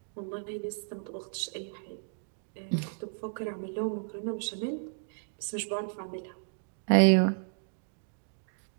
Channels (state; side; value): silent; left; digital silence